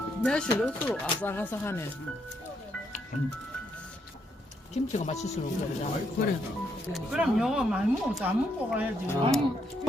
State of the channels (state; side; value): normal; both; correlation 0.76